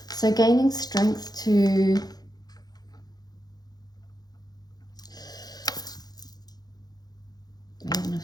So gaining strength to... Maiden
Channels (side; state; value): right; late; 0.19 ms